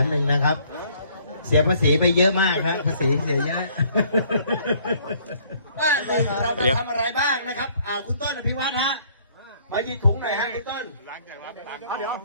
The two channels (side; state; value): both; inverted; correlation -0.61